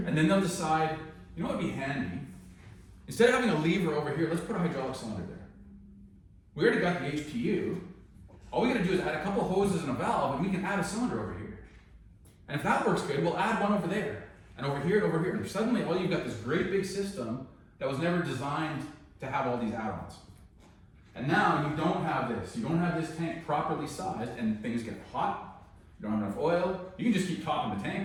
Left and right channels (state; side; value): identical; both; correlation 1.00